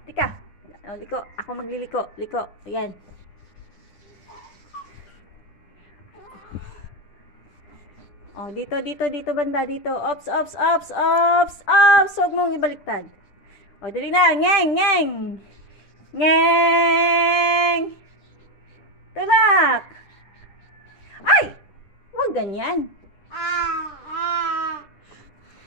tika. Oh, liko. Ako magliliko. Liko. Ayan. Oh, dito, dito, dito banda, dito. Ops, ops, ops, ops, ops. Huwag mong ibaliktad. Oh, dali na. Ngeng, ngeng. Ngeng. Tulak. Ay! Huwag ganyan.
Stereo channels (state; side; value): late; right; 9.9 ms